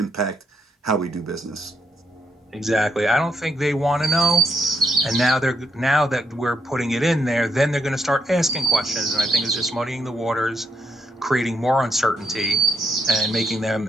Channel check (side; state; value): both; normal; correlation 0.78